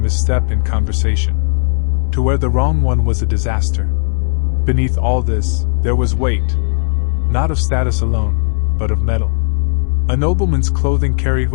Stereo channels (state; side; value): silent; right; digital silence